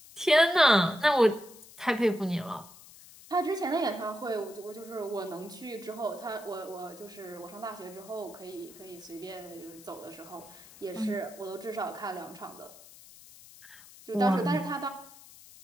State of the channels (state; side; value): noise; left; hiss, 20 dB below the sound